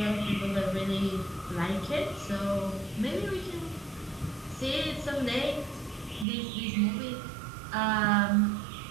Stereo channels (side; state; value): left; drops out; at 6.2 s